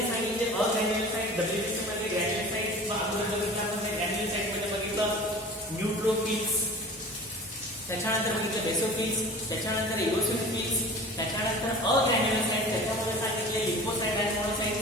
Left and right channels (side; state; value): both; normal; correlation 0.41